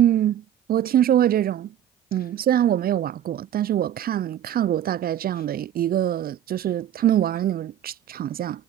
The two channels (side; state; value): left; quieter; 10.9 dB